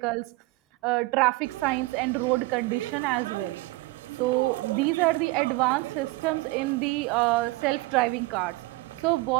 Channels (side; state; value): left; quieter; 21.7 dB